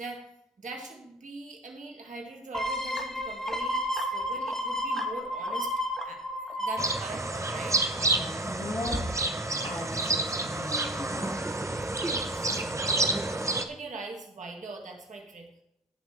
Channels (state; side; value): normal; both; correlation 0.35